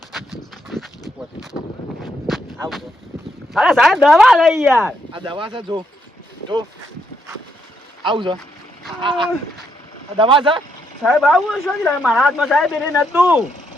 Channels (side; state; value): both; normal; correlation 0.77